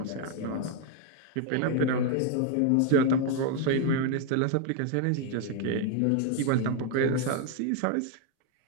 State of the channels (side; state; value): both; different; correlation 0.00